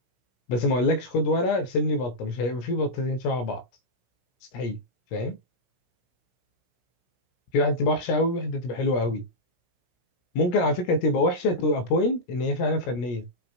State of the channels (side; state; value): right; late; 17 ms